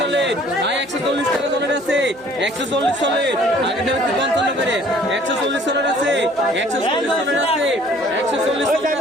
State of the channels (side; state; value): right; noise; hum, 30 dB below the sound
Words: ভাই 140 টাকা সলিড আছে 140 সলিড আগে দেবে 55 করে 140 সলিড আছে 140 সলিড আছে 140 সলিড